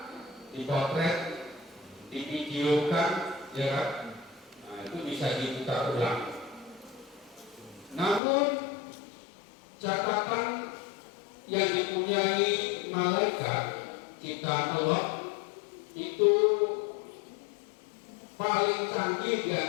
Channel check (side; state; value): right; drops out; at 8.2 s